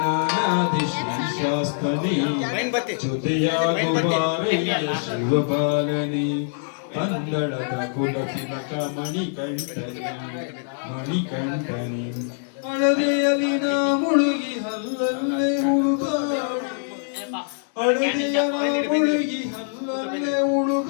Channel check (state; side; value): silent; right; digital silence